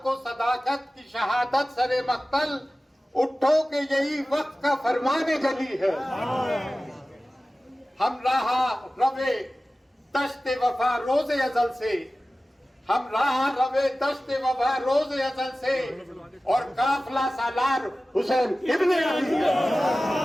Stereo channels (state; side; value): normal; both; correlation 0.96